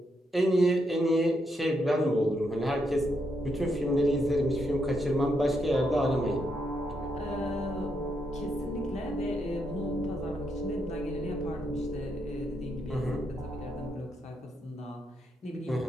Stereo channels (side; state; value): both; normal; correlation 0.79